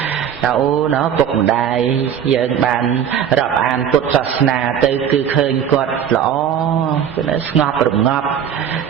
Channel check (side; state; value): left; quieter; 8.7 dB